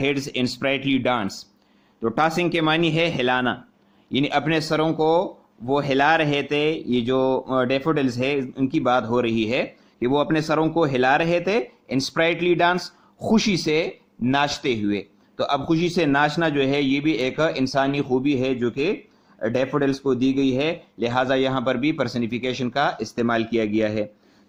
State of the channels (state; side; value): identical; both; correlation 1.00